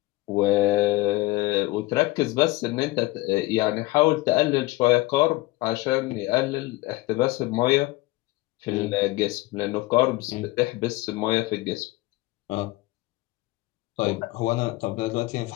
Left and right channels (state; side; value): quieter; right; 19.9 dB